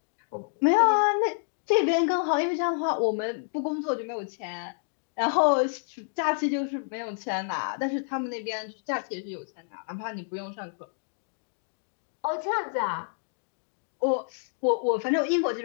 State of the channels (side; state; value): right; silent; digital silence